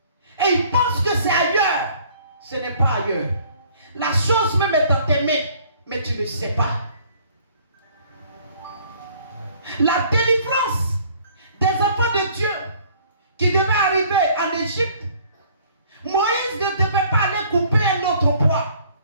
Et il pense que c'est ailleurs. Ce n'est pas ailleurs. La chose même est dans tes mains, mais tu ne sais pas. La délivrance des enfants de Dieu qui devaient arriver en Égypte, Moïse ne devait pas aller couper un autre bois.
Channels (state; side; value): inverted; both; correlation -0.57